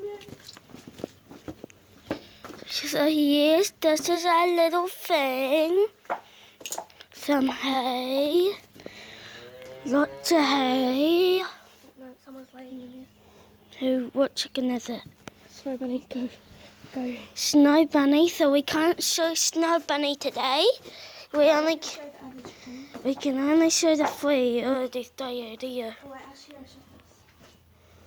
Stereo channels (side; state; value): both; identical; correlation 1.00